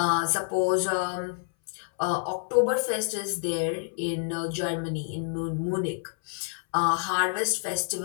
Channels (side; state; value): right; silent; 59 dB below the other